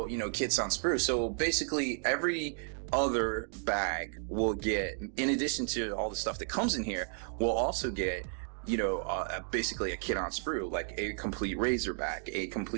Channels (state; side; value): silent; left; 56 dB below the other